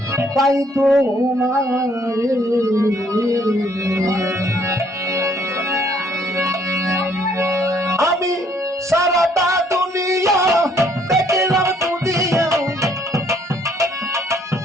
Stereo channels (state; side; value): normal; both; correlation 0.65